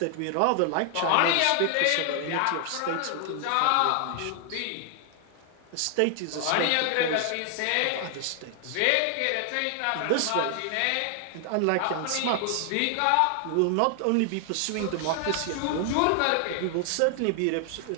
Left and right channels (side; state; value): both; different; correlation 0.00